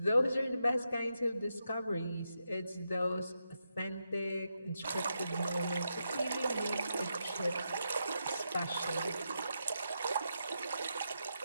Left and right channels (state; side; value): inverted; both; correlation -0.85